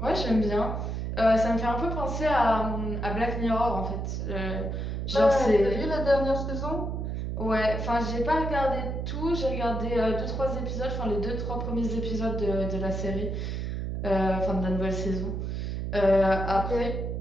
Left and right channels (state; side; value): noise; right; hum, 3 dB below the sound